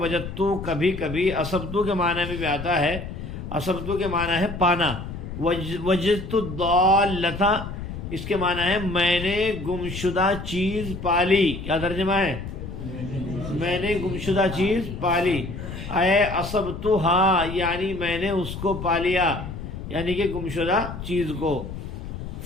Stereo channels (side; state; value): left; noise; rumble, 8 dB below the sound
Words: کبھی کبھی اصبت کے معنی میں بھی آتا ہے، اصبت کے معنی ہے پانا۔ وجدت الضالۃ، اس کے معنی ہے میں نے گمشدہ چیز پالی۔ کیا ترجمہ ہے؟ میں نے گمشدہ چیز پالی۔ اے اصبتھا، یعنی میں نے اس کو پا لیا، یعنی کہ گمشدہ چیز کو۔